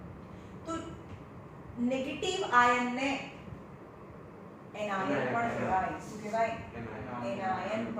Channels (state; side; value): identical; both; correlation 1.00